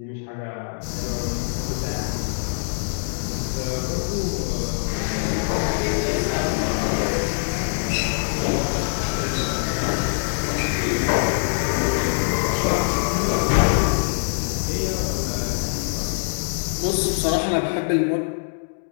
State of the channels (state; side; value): silent; right; digital silence